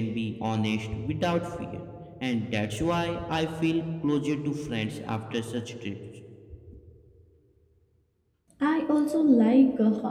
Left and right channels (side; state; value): both; identical; correlation 1.00